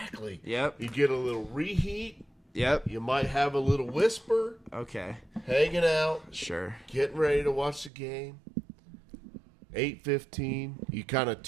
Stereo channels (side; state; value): left; drops out; at 7.9 s